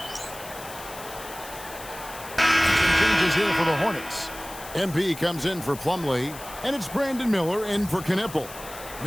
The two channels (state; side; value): noise; left; hiss, 15 dB below the sound